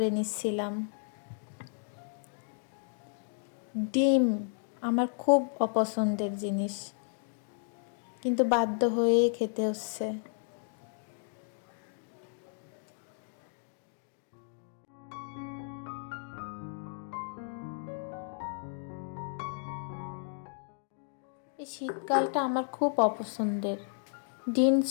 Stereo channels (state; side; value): silent; right; 56 dB below the other